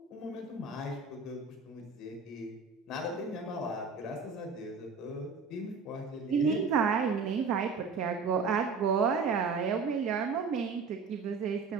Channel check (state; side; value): quieter; left; 4.7 dB